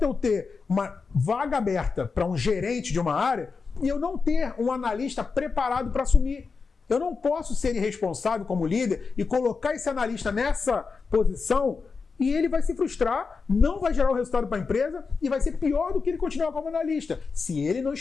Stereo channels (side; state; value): right; quieter; 4.8 dB